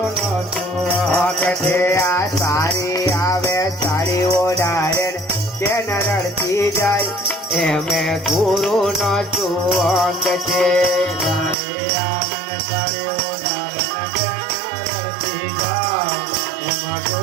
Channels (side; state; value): left; drops out; at 11.6 s